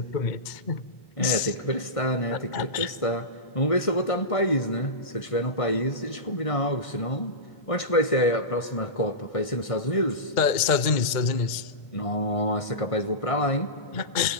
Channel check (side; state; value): right; late; 2.1 ms